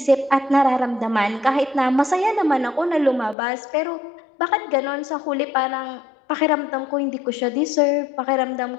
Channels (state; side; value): drops out; right; at 3.4 s